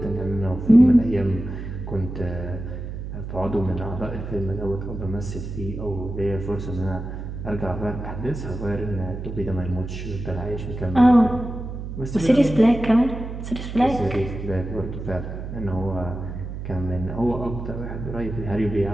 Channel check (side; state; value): right; noise; hum, 7 dB below the sound